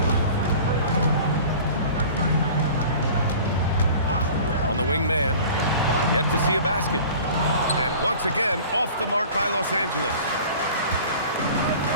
On the wing man, yet to see a basket. And once again, off the mark by Los Angeles.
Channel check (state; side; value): inverted; both; correlation -0.43